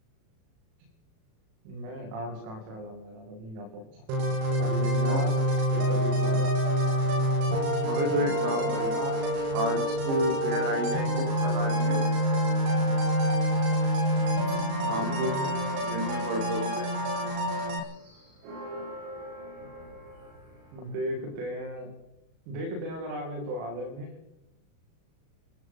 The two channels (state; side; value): late; left; 36 ms